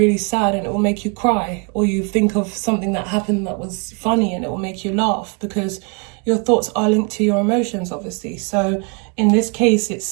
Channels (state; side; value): quieter; left; 35.3 dB